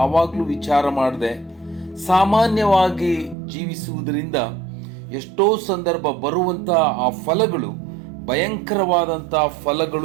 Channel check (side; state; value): left; drops out; at 3.4 s